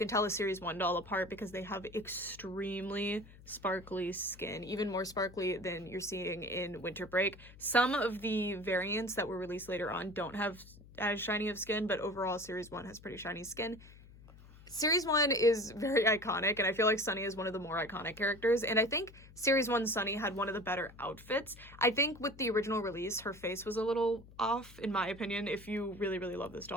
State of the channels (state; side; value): noise; left; hum, 20 dB below the sound